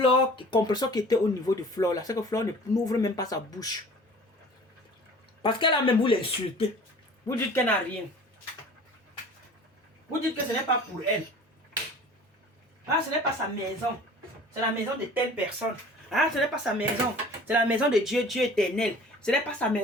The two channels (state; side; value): normal; both; correlation 0.45